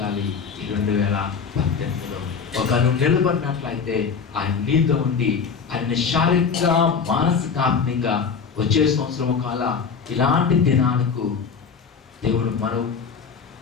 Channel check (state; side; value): quieter; right; 5.9 dB